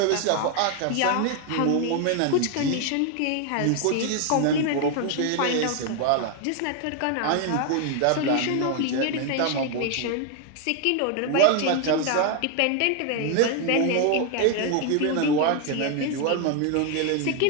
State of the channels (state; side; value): different; both; correlation 0.01